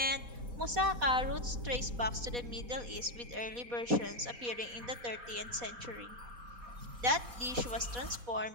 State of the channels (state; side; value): late; left; 4.1 ms